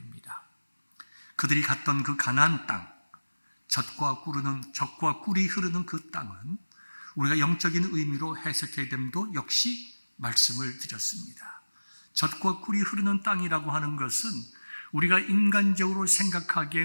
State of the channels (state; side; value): inverted; both; correlation -1.00